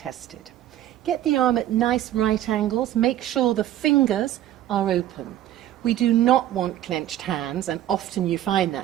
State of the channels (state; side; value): quieter; left; 12.7 dB